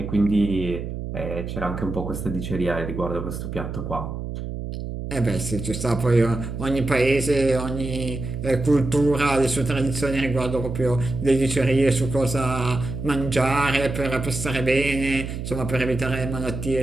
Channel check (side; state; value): right; noise; hum, 6 dB below the sound